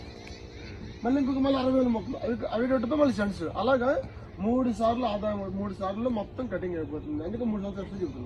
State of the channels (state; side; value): identical; both; correlation 1.00